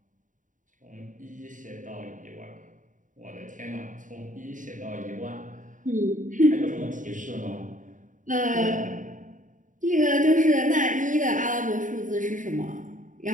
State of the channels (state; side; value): late; left; 0.37 ms